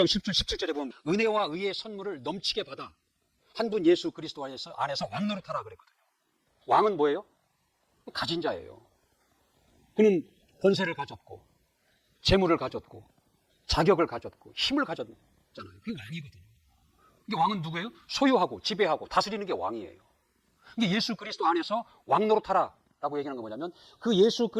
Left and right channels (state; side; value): identical; both; correlation 1.00